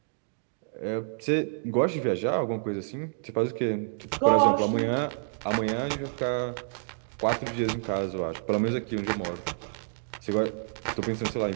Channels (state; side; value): silent; left; digital silence